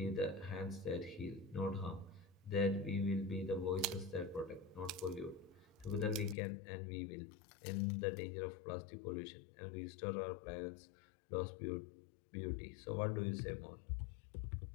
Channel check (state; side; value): drops out; right; at 6.4 s